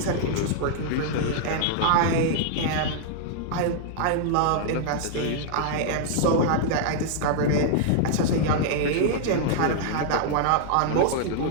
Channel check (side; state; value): both; different; correlation -0.01